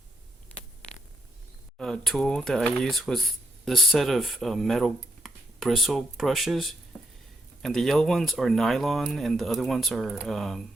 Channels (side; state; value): both; normal; correlation 0.81